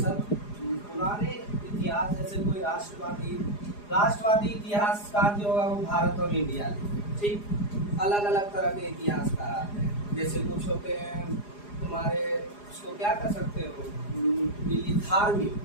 पुराने इतिहास, जैसे कोई राष्ट्रवादी इतिहासकार जो होगा वो भारत और इंडिया लिखे, ठीक। अलग अलग तरह के इतिहासकार आते हैं, जैसे कुछ होते हैं तुम्हारे, उसको क्या कर सकते हो, धार्मिक,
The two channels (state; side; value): late; right; 4.9 ms